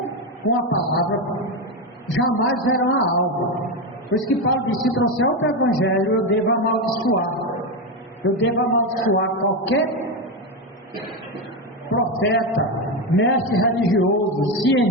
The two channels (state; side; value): normal; both; correlation 0.12